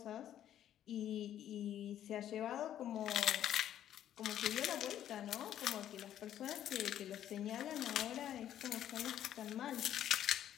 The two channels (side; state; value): right; quieter; 11.1 dB